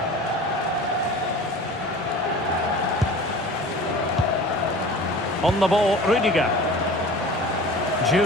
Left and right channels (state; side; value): normal; both; correlation 0.40